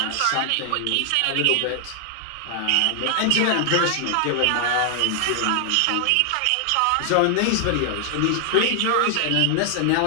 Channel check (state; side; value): different; both; correlation 0.00